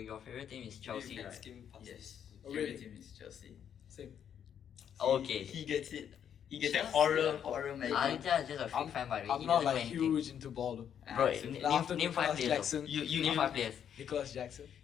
favorite team is Maybe Chelsea, we can right? skim past Yes. this. Oh, Favorite really? team is Chelsea. Same. Okay. He gets it. He gets Chelsea. that horror magic. Aditya is just a freak I'm, fan by the way. I'm He not doesn't know like anything. huge into ball though. Bro, Ah, so- name, After name 5 Nicolas players. Jackson. though. Name 5 players. Nicholas Jackson,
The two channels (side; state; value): right; quieter; 8.8 dB